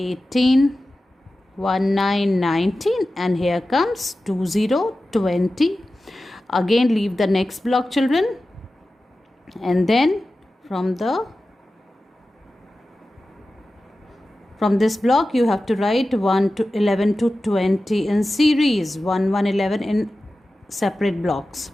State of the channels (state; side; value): normal; both; correlation 0.94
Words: 1, 9, 19. And here comes 2, 0, 20. Again leave the next block, children. And then from this block, you have to write 1 to 11 to 20 in series. 1, 1, 11 in separate blocks.